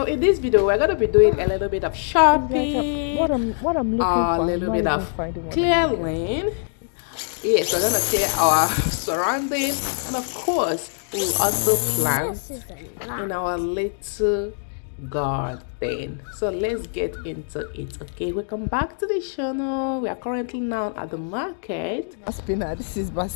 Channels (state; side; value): silent; right; digital silence